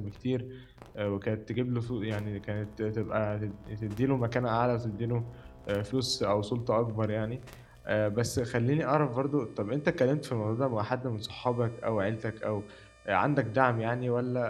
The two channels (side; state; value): both; identical; correlation 1.00